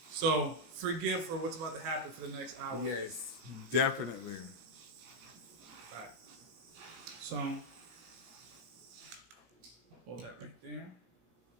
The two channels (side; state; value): left; late; 17 ms